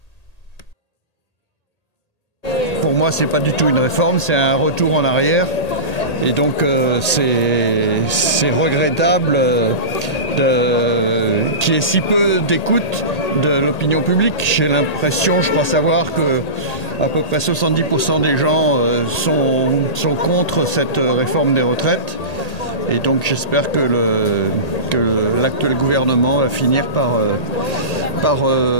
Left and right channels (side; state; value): right; late; 1.8 ms